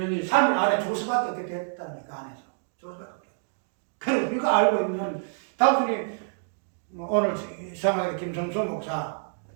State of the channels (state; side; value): silent; left; digital silence